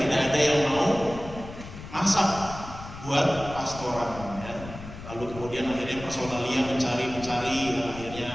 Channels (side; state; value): left; noise; rumble, 13 dB below the sound